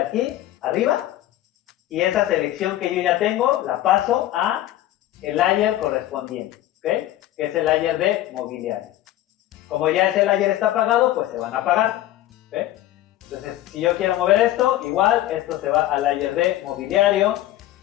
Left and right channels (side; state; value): right; quieter; 14.1 dB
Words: arriba y esa selección que yo ya tengo la paso a el layer correspondiente, ¿ok? Que es el layer de mobiliario. Como ya ese layer está apagado, pues se van a apagar, ¿ok? Entonces, si yo quiero mover esto, igual esto se va al layer de mobiliario.